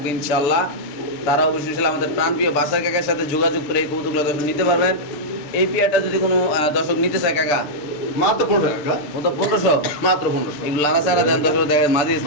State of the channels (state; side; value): late; right; 6.9 ms